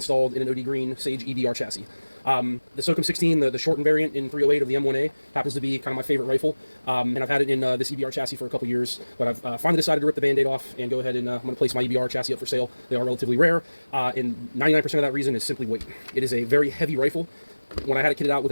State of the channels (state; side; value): inverted; both; correlation -1.00